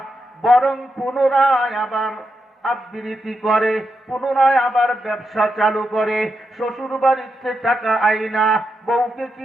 বরং পুনরায় আবার আবৃত্তি করে, পুনরায় আবার ব্যবসা চালু করে, শ্বশুর বাড়িতে টাকা আইনা, বউকে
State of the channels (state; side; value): normal; both; correlation 0.85